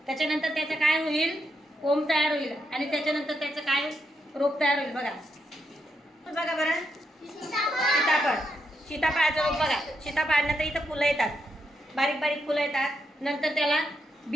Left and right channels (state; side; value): normal; both; correlation 0.81